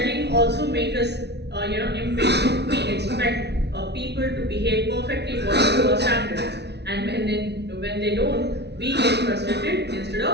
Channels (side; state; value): left; late; 0.49 ms